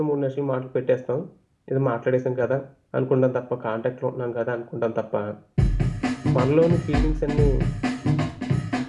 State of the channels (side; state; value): both; identical; correlation 1.00